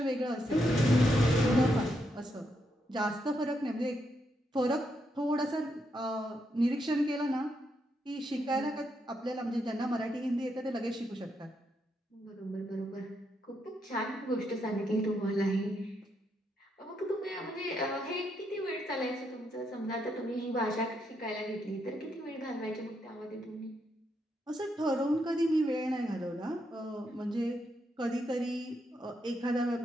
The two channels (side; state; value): both; normal; correlation 0.79